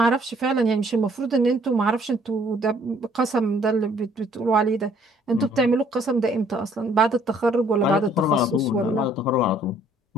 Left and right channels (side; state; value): both; normal; correlation 0.62